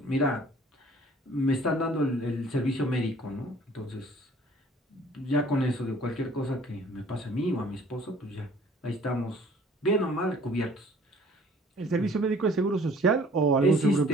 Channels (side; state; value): both; normal; correlation 0.54